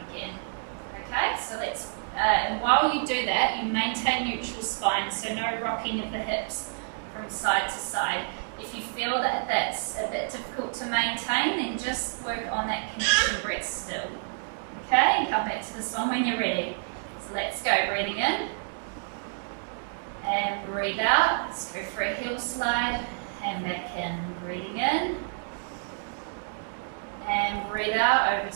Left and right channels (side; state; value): left; silent; digital silence